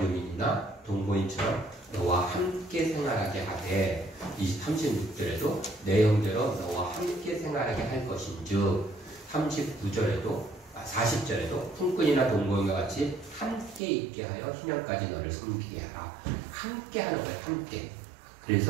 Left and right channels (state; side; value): drops out; left; at 13.8 s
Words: 동거인처럼 너와 함께 생활하게 하되 36절에도 내 형제로 너와 함께 생활하게 할 것인즉 40절에도 품꾼이나 동거인과 같이 함께 있게 하여 희년까지 너를 섬기게 하라. 함께 하는 거예요. 함께.